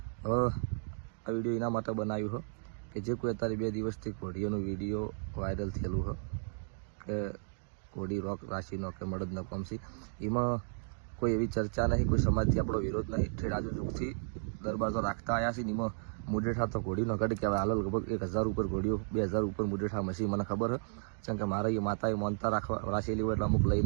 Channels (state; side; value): silent; left; digital silence